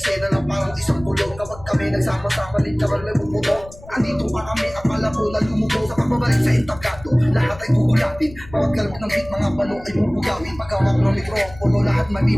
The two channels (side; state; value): left; noise; rumble, 18 dB below the sound